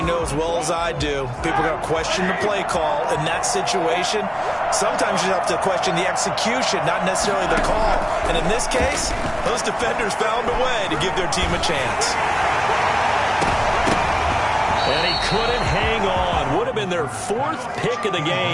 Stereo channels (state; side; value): identical; both; correlation 1.00